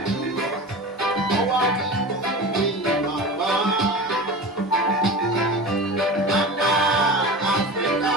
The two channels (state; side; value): normal; both; correlation 0.31